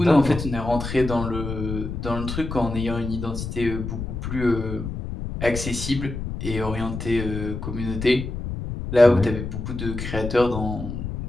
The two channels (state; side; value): noise; left; rumble, 6 dB below the sound